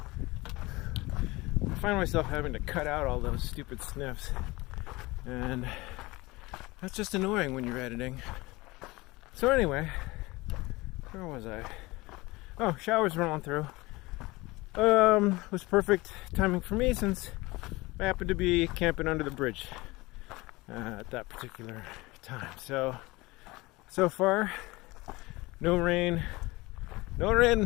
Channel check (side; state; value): right; quieter; 21.9 dB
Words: I find myself having to cut out all those stupid sniffs, and that's just annoying when you're editing. So anyway, where was I? Oh, showers rolling through. Was perfect timing for me since I happened to be camping under the bridge at that particular time. So far, no rain